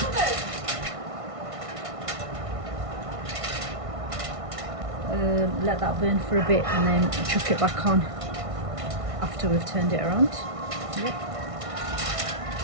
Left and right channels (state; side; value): late; left; 1.6 ms